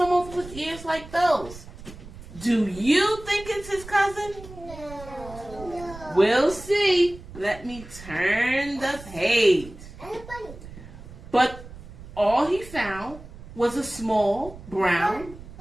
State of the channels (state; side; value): noise; right; rumble, 16 dB below the sound